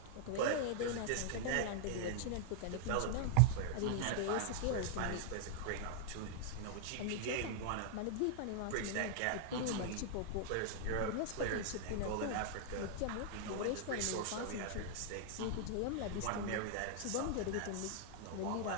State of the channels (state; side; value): different; both; correlation 0.00